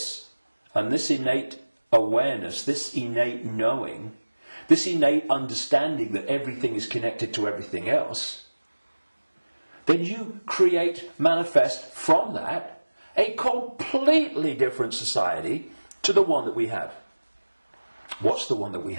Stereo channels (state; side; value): inverted; both; correlation -1.00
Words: and this innate awareness, this innate knowing, this innate understanding that everything is connected to everything else, then you manifest from that a completely different society to the one that we have. What's the one that we